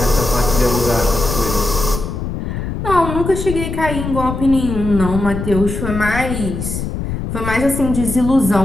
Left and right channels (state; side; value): noise; left; rumble, 5 dB below the sound